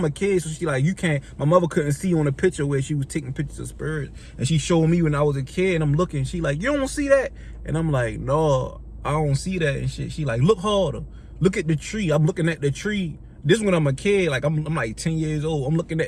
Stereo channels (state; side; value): identical; both; correlation 1.00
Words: a kid, so she like, you can't, my mother couldn't see on the picture where she was taking pictures of spirits. And she showed me when I was a kid, and I'm looking. She like, you don't see that? And I'm like, no, I don't see that and shit. She like, look harder. Look at the tree. I'm looking at the tree. This when I'm a kid, like I'm like 10 years old. I'm looking